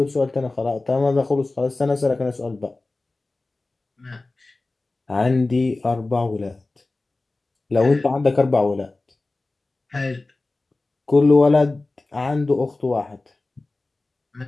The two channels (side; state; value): right; quieter; 3.2 dB